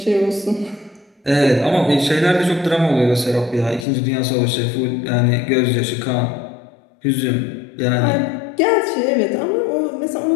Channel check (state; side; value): drops out; right; at 3.9 s